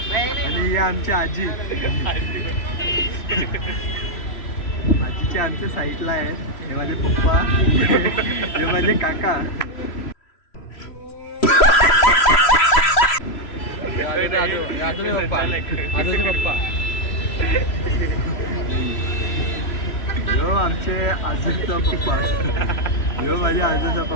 आणि ही आमची आजी. आजीचे आमच्या साईडला आहेत. हे माझे पप्पा, हे माझे काका. यो आमचे आजूचा पप्पा. यो माझ्या आजूचा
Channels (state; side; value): late; right; 3.0 ms